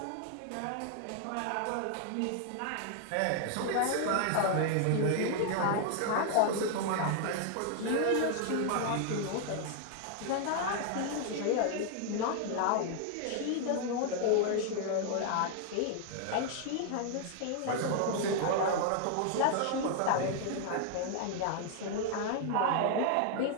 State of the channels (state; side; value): different; both; correlation 0.00